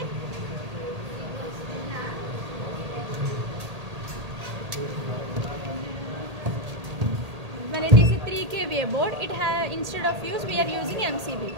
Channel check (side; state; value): left; late; 1.8 ms